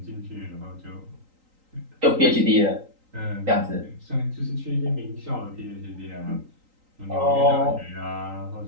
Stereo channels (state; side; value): late; left; 3.8 ms